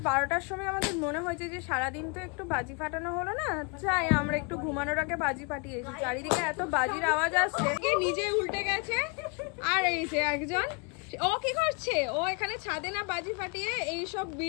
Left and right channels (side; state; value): right; quieter; 33.4 dB